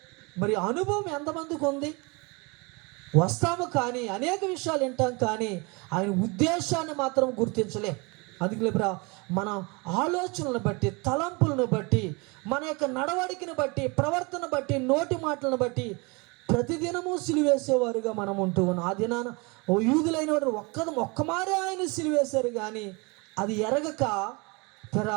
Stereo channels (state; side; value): quieter; left; 28.4 dB